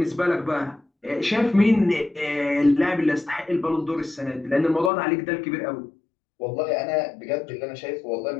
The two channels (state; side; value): drops out; right; at 4.9 s